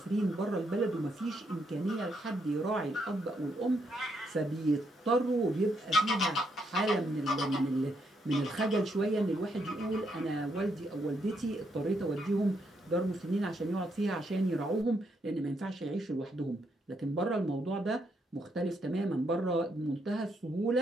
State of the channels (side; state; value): both; normal; correlation 0.77